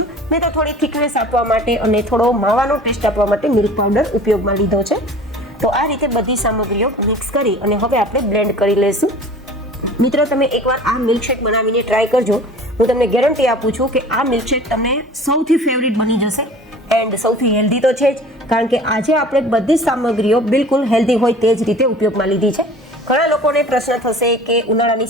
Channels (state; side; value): normal; both; correlation 0.44